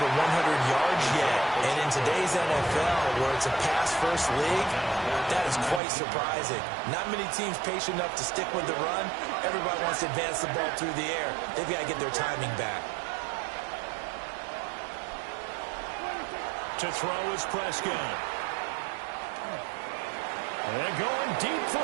100 yards yet. And in today's NFL, where it's a pass-first league, that is quite surprising. Not many teams patient enough to stick with the run. Everybody wants to advance the ball through the air. They've got to get their timing back. To throw is Prescott. And going deep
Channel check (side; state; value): left; drops out; at 5.8 s